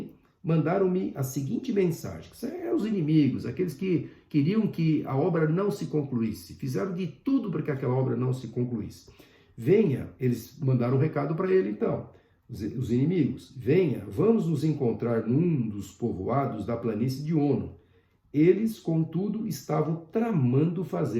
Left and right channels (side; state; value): both; identical; correlation 1.00